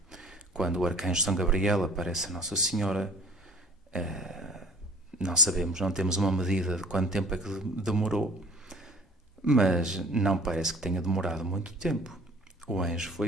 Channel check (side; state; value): both; normal; correlation 0.49